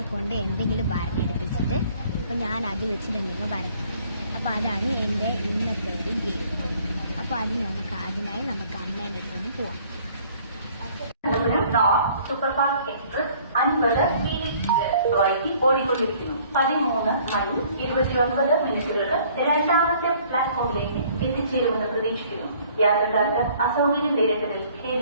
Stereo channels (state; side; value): inverted; both; correlation -0.57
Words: കൊണ്ട് എന്തെങ്കിലും വരഞ്ഞെടുപ്പിച്ചിട്ട് അപ്പോൾ ഞാൻ അത് വെച്ചിട്ട് എന്തെങ്കിലും വരയ്ക്കും. അപ്പോൾ അതാണ് എൻ്റെ ഇന്നത്തെ ഒരു ഗെയിം. അപ്പോൾ അതിനായി നമുക്ക് അമ്മേൻ്റെ അടുത്തൊന്ന് പോവാം. സൂപ്പർഫാസ്റ്റ് എക്സ്പ്രസ് 50 വൈകി ഓടിക്കൊണ്ടിരിക്കുന്നു. 13 മണി 29 രണ്ടാമത്തെ പ്ലാറ്റ്ഫോമിലേക്ക് എത്തിച്ചേരുമെന്ന് പ്രതീക്ഷിക്കുന്നു. യാത്രക്കാർക്ക് അസൗകര്യം നേരിട്ടതിൽ